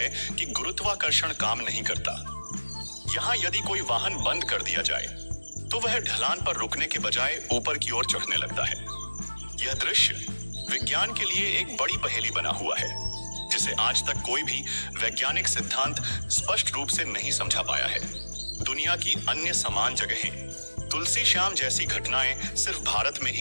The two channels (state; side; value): inverted; both; correlation -1.00